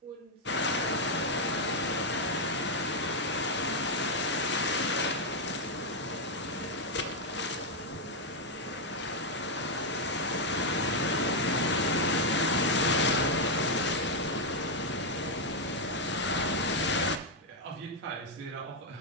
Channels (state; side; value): normal; both; correlation 0.01